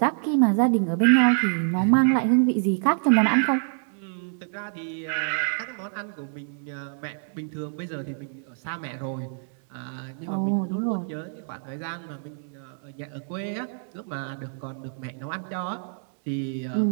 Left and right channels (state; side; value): silent; left; digital silence